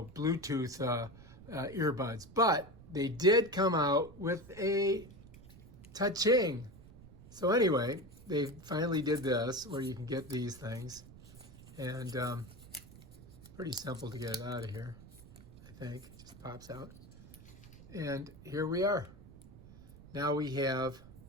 earbuds. But they did come out with a touching. So anyway, they finally did this where you can get these things, and pretty simple to get it out of here, I think. It just pops out. And here we are. Now we have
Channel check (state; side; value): noise; right; rumble, 19 dB below the sound